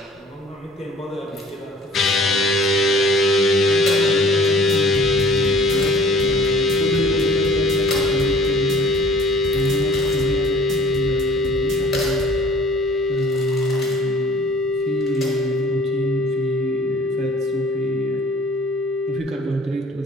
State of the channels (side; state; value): both; normal; correlation 0.51